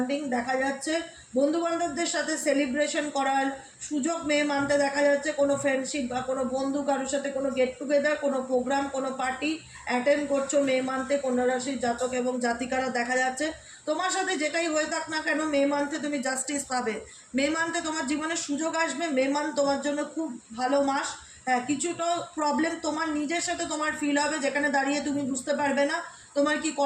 দেখা যাচ্ছে। বন্ধুবান্ধবদের সাথে সেলিব্রেশন করার সুযোগ মে মান্থে দেখা যাচ্ছে। কোনো ফ্রেন্ডশিপ বা কোনো বন্ধু কারোর সাথে কোনো গেট টুগেদার, কোনো প্রোগ্রাম, কোনো পার্টি অ্যাটেন্ড করছো মে মান্থে কন্যা রাশির জাতক এবং জাতিকারা দেখা যাচ্ছে। তোমার সাথে যেটাই হয়ে থাক না কেন মে মান্থে তুমি জাস্টিস পাবে। মে মান্থে তোমার জীবনে সুযোগ আসবে। মে মান্থ তোমার জন্য খুব ভালো মাস। হ্যাঁ, কিছুটা প্রবলেম তোমার নিজের সাথে তোমার ফিল হবে যেখানে দাঁড়িয়ে তুমি বুঝতে পারবে না তোমার কি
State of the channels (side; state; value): both; identical; correlation 1.00